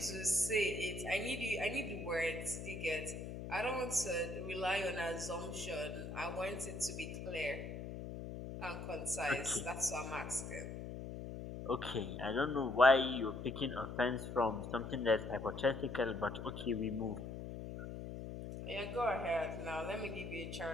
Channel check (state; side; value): noise; left; hum, 7 dB below the sound